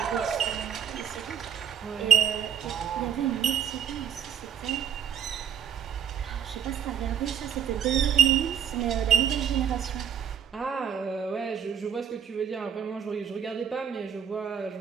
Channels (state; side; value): quieter; left; 8.7 dB